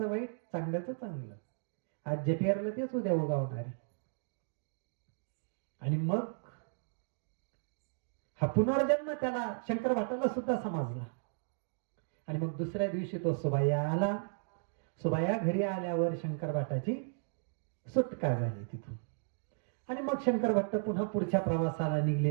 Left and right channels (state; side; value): silent; left; digital silence